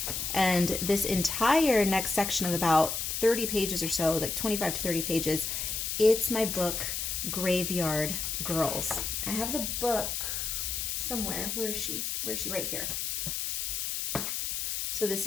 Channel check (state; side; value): noise; left; hiss, 2 dB below the sound